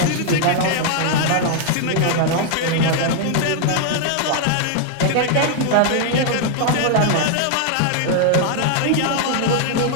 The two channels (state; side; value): different; both; correlation 0.00